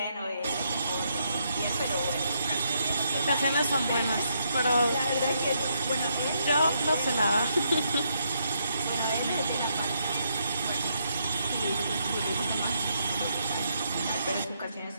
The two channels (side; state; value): both; inverted; correlation -0.76